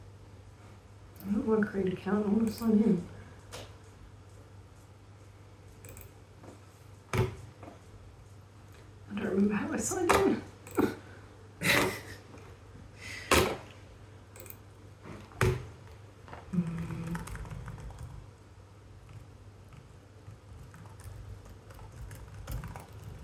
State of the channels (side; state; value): both; identical; correlation 1.00